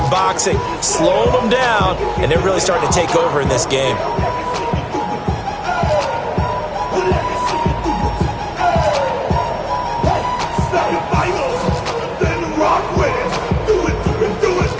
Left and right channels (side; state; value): both; identical; correlation 1.00